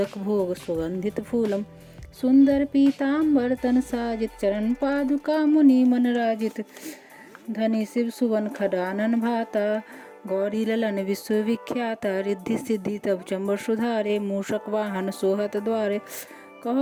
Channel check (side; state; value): both; identical; correlation 1.00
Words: भोग सुगंधित फूलम सुंदर पीताम्बर तन साजित चरण पादुका मुनि मन राजित धनी शिव सुवन खडानन भाता गौरी ललन विश्वविख्याता रिद्धि सिद्धि तब चंबर सुधारे मूषक वाहन सोहत द्वारे